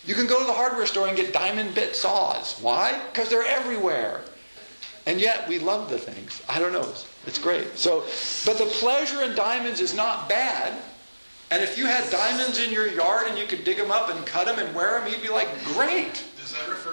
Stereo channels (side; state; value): both; inverted; correlation -1.00